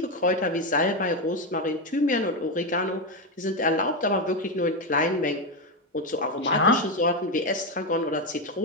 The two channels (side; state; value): both; normal; correlation 0.09